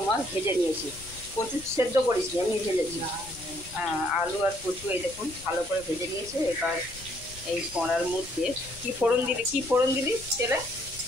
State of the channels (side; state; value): left; noise; rumble, 18 dB below the sound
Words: ভেজে নিয়েছি। কচু সেদ্ধ করিস নি, আমি ভেজেছি। আলু আর কচু এই দেখুন ভালো করে ভেজে নিয়েছে। এবার এই কড়ার মধ্যে কি ফোড়ন দিলি তেলে?